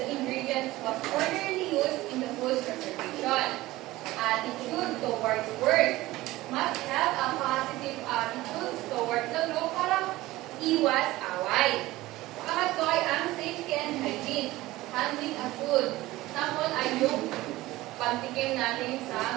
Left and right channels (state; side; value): quieter; left; 17.9 dB